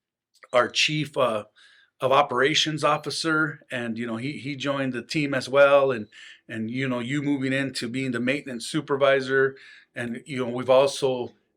chief of operations officer, and he joined the team as well, and you moving into being the maintenance supervisor, and we've also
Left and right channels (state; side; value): identical; both; correlation 1.00